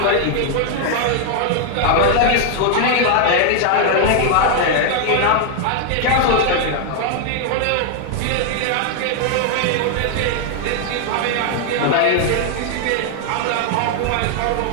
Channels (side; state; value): both; different; correlation 0.00